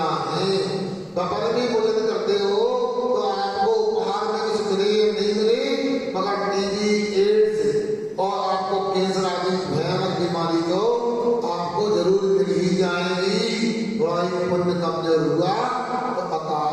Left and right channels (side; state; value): both; identical; correlation 1.00